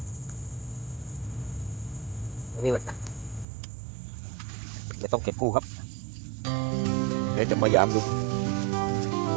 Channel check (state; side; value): drops out; left; at 3.5 s